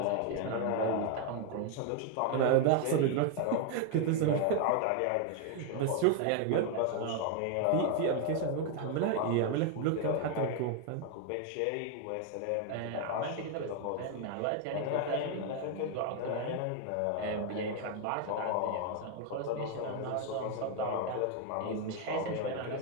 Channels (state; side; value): different; both; correlation 0.01